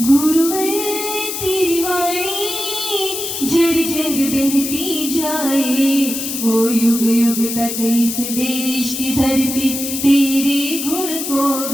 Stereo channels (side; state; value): left; noise; hiss, 5 dB below the sound